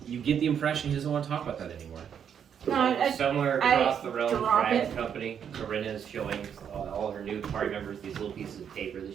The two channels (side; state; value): left; quieter; 8.1 dB